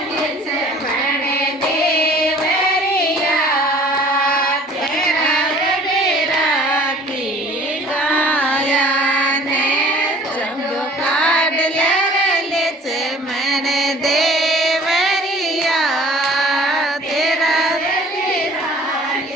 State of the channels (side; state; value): both; normal; correlation 0.50